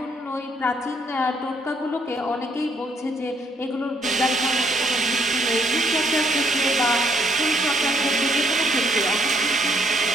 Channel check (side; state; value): both; normal; correlation 0.70